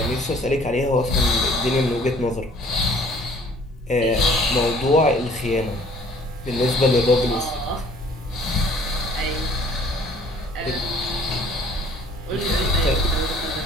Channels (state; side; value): normal; both; correlation 0.55